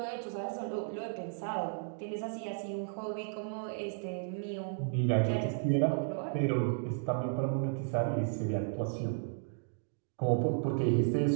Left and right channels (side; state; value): left; silent; digital silence